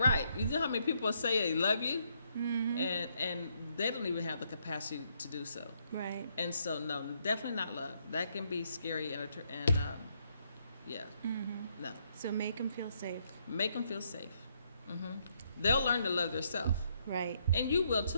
You know how many people say they love you, and they don't even have the capacity to do so. Right. And so, no, definitely not love. That can be scary and yeah, no. So make them feel safe. Make them feel safe. They'll learn to love themselves. Right. And you will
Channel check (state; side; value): inverted; both; correlation -0.74